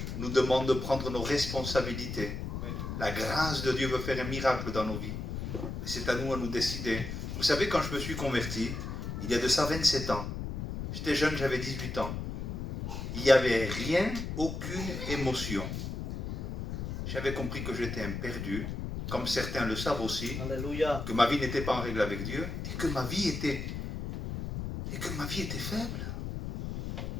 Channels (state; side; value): noise; left; rumble, 5 dB below the sound